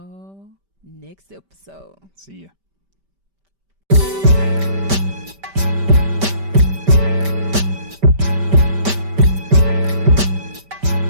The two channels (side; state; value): left; late; 5.1 ms